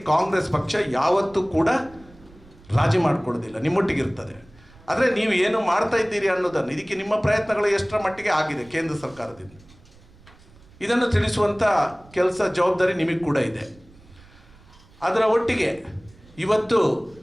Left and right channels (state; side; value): noise; right; rumble, 25 dB below the sound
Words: ಕಾಂಗ್ರೆಸ್ ಪಕ್ಷ ಯಾವತ್ತೂ ಕೂಡ ರಾಜಿ ಮಾಡಿಕೊಡೋದಿಲ್ಲ, ನಿಮ್ಮೊಟ್ಟಿಗಿರ್ತದೆ. ಆದರೆ ನೀವು ಏನು ಮಾಡ್ತಾ ಇದ್ದೀರಿ ಅನ್ನೋದನ್ನು, ಇದಕ್ಕೆ ನಿಮ್ಮ ಪ್ರಯತ್ನಗಳು ಎಷ್ಟರ ಮಟ್ಟಿಗೆ ಆಗಿದೆ ಕೇಂದ್ರ ಸರ್ಕಾರದಿಂದ, ಇದನ್ನು ತಿಳಿಸುವಂಥ ಕೆಲಸ ಜವಾಬ್ದಾರಿ ನಿಮಗೆ ಕೂಡ ಇದೆ. ಅದರ ಒಟ್ಟಿಗೆ ಇವತ್ತು